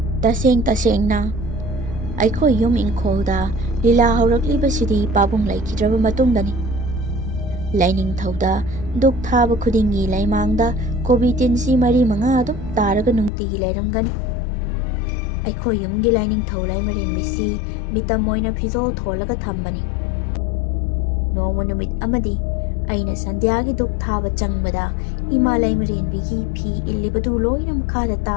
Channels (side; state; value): right; drops out; at 13.3 s